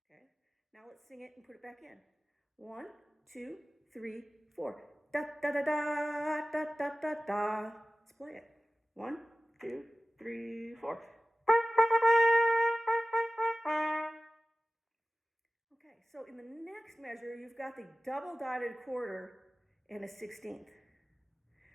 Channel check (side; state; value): both; normal; correlation 0.97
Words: Okay, now let's sing it and put it back in. 1, 2, 3, 4. Da da da da da da da da. Let's play it. 1, 2, 3, 4. Okay, so in the next measure, you've got the double dotted quarter and a 16th.